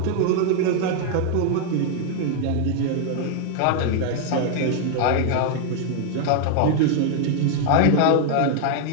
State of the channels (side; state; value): both; different; correlation 0.00